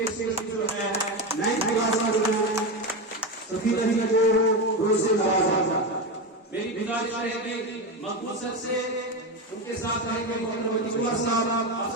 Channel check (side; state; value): both; normal; correlation 0.16